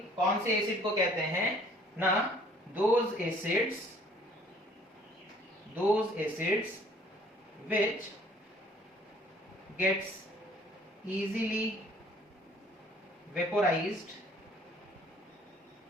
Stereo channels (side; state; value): both; normal; correlation 0.57